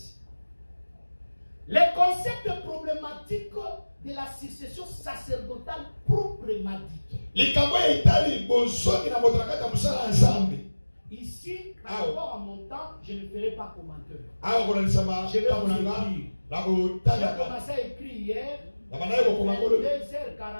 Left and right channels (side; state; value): both; inverted; correlation -1.00